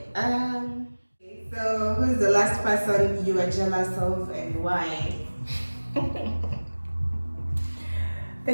So who's the last person you are jealous of and why? The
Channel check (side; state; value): both; inverted; correlation -1.00